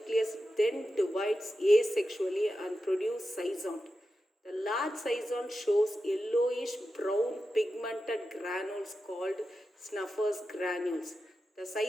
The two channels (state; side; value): normal; both; correlation 0.91